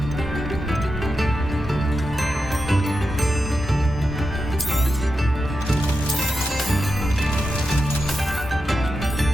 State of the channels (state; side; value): normal; both; correlation 0.88